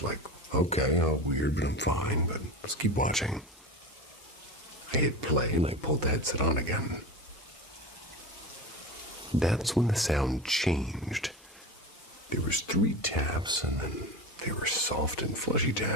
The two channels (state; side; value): normal; both; correlation 0.27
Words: like, okay, weird, but I'm fine, but let's keep watching. I hit play and I pulled the headset on again. That's when the sound changed. There was 3 taps, and then they were soft and fleshy